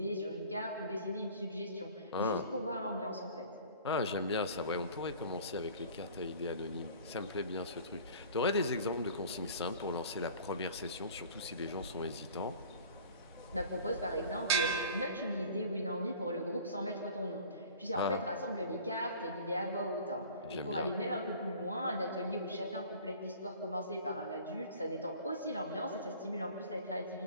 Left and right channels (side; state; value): both; inverted; correlation -0.45